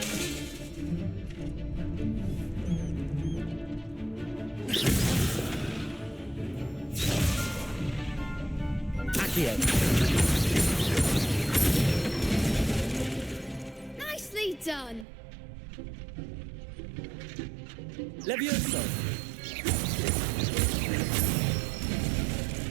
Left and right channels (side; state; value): left; drops out; at 15.1 s